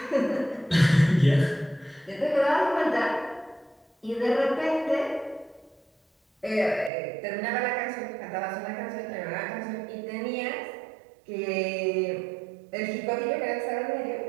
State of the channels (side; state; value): left; drops out; at 6.9 s